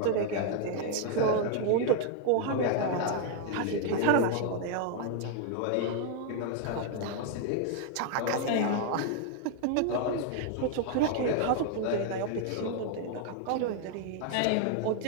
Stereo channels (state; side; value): different; both; correlation 0.00